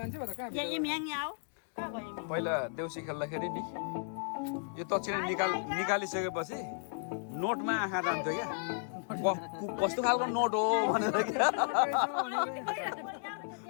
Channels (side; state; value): right; silent; digital silence